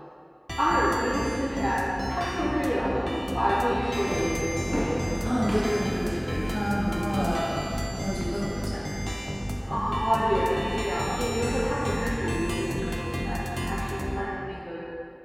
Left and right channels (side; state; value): both; identical; correlation 1.00